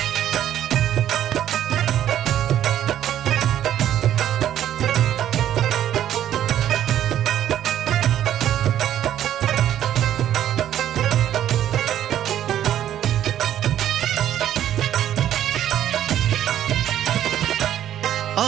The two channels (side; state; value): left; quieter; 11.2 dB